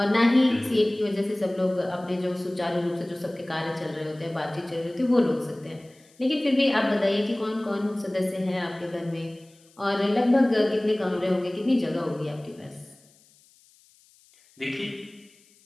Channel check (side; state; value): left; noise; hiss, 30 dB below the sound